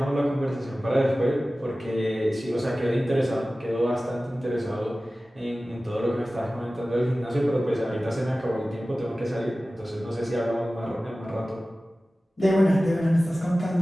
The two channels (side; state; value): both; normal; correlation 0.96